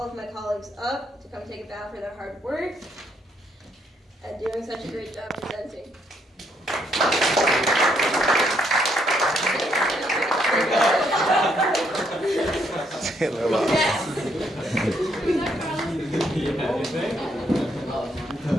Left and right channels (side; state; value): both; normal; correlation 0.72